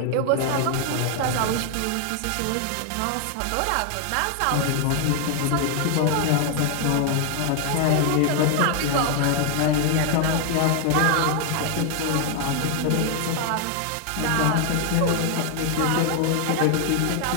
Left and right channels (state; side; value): different; both; correlation 0.00